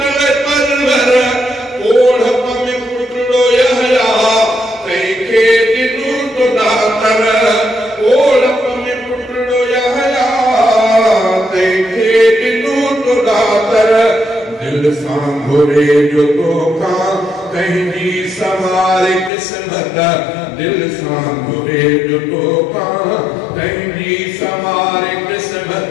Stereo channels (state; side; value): drops out; right; at 19.3 s